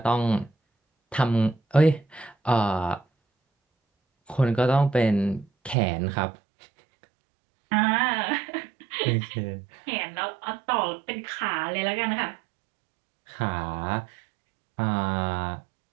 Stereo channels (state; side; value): drops out; left; at 5.8 s